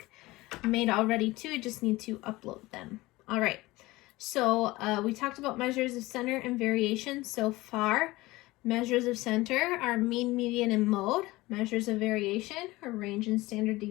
made already too. I just need to upload them. All right. So we talked about measures of center and variation so far. Measures of center are mean, median, and mode. Measures of variation are range and standard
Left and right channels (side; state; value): right; quieter; 19.9 dB